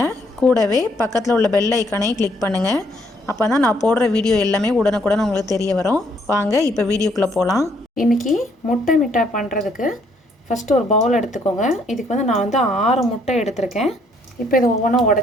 கூடவே பக்கத்தில் உள்ள பெல் ஐக்கானையும் கிளிக் பண்ணுங்கள். அப்போ தான் நான் போடுற வீடியோ எல்லாமே உடனுக்குடன் உங்களுக்கு தெரிய வரும். வாங்க இப்போ வீடியோக்குள்ளே போகலாம். இன்றைக்கி முட்டை மிட்டாய் பண்ணுறதுக்கு ஃபஸ்ட்டு ஒரு பவுல் எடுத்துக்கோங்க. இதுக்கு வந்து நான் வந்து 6 முட்டை எடுத்திருக்கேன். இப்போ இதை ஒவ்வொன்றா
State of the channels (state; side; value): normal; both; correlation 0.68